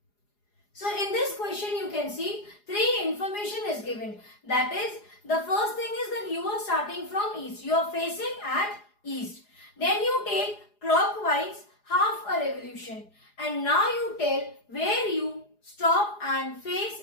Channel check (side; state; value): right; late; 4.8 ms